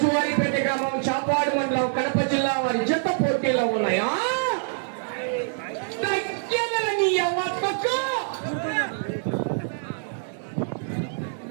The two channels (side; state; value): left; silent; digital silence